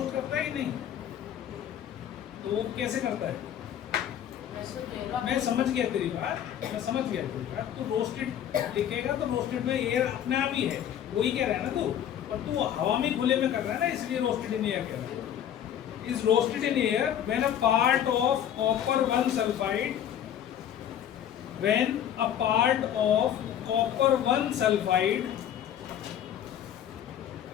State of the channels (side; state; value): right; quieter; 10.1 dB